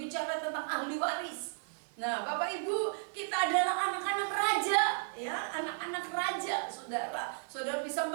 tentang ahli waris. Nah, Bapak Ibu, kita adalah anak-anak raja, ya, anak-anak raja, saudara. Saudara bisa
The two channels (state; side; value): silent; left; 55 dB below the other